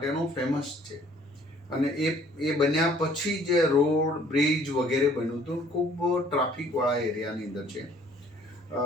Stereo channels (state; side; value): normal; both; correlation 0.58